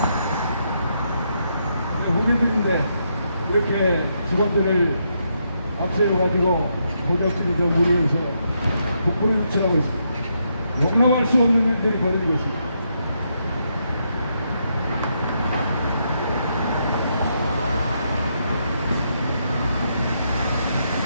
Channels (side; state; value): both; inverted; correlation -0.79